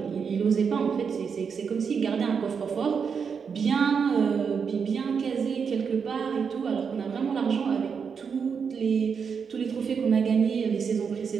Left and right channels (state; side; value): quieter; left; 6.3 dB